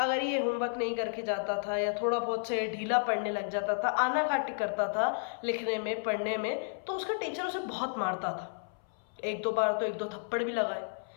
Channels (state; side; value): silent; right; 56 dB below the other